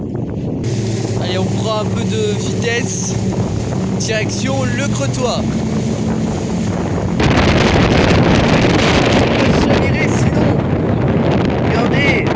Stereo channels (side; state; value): both; identical; correlation 1.00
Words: Allez, on prend un peu de vitesse. Direction le Crotoy. Chaviré sinon. Regardez.